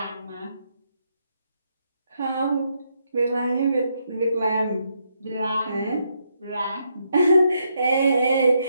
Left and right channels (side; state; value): both; inverted; correlation -0.78